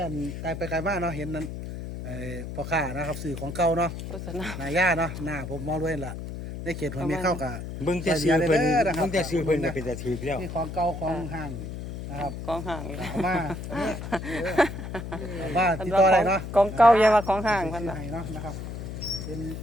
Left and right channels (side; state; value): left; noise; hum, 8 dB below the sound